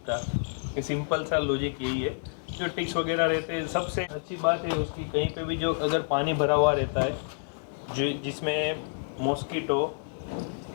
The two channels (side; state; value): right; silent; digital silence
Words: ये सिंपल सा लॉजिक यही है। जो टिक्स वगैरह रहते हैं, सबसे अच्छी बात है उसकी, कहीं पे भी जो अगर पानी भरा हुआ रहता है जो जिसमें मॉस्किटो